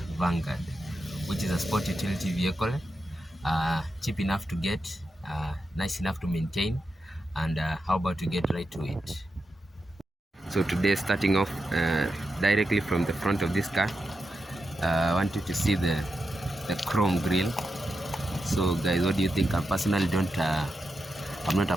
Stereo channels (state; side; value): normal; both; correlation 0.88